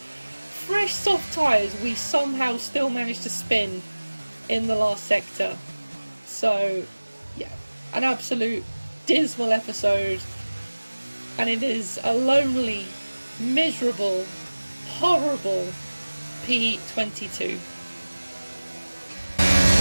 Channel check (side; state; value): both; inverted; correlation -1.00